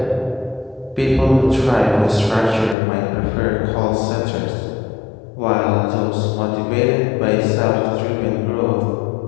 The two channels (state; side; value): drops out; right; at 2.8 s